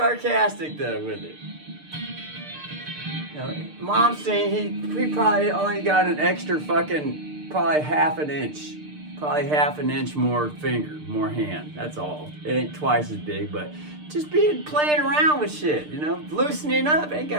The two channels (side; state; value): left; late; 6.6 ms